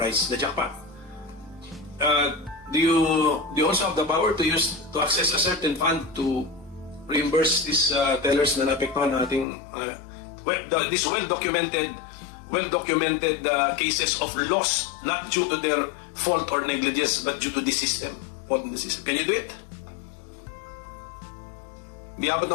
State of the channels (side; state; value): right; drops out; at 9.5 s